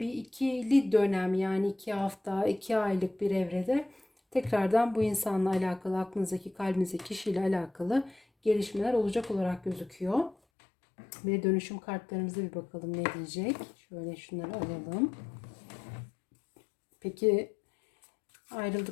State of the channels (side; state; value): right; drops out; at 10.4 s